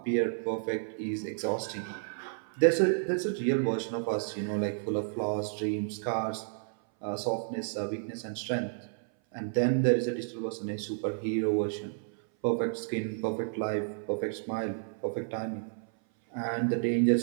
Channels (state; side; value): silent; left; 57 dB below the other